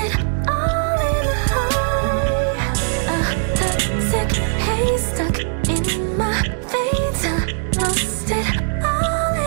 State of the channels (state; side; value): silent; left; digital silence